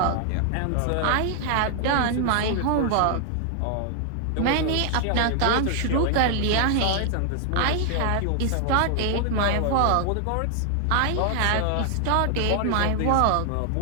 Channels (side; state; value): both; different; correlation 0.00